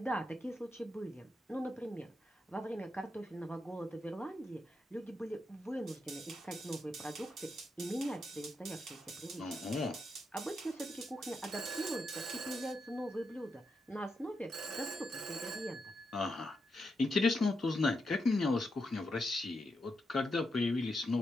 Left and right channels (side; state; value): both; normal; correlation 0.84